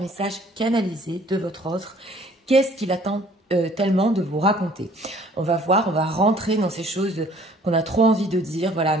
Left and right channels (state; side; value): normal; both; correlation 0.55